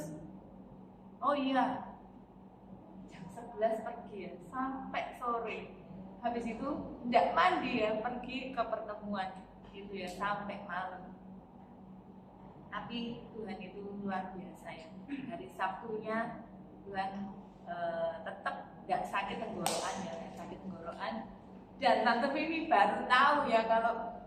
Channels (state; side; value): identical; both; correlation 1.00